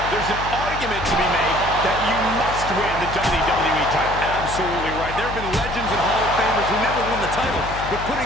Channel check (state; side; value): noise; left; hum, 9 dB below the sound